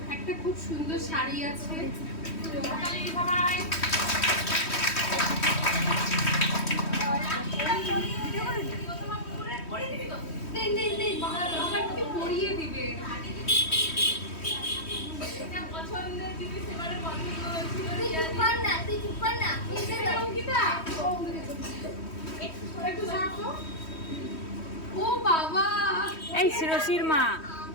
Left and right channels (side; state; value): right; late; 3.1 ms